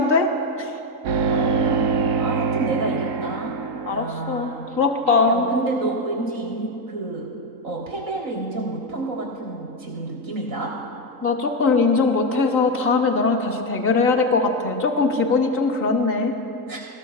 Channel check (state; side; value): late; left; 3.8 ms